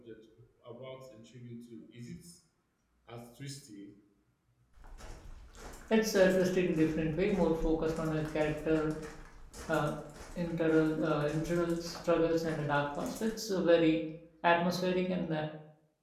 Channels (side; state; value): both; identical; correlation 1.00